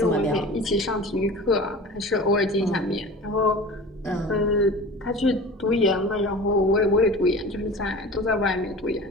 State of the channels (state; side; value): normal; both; correlation 0.37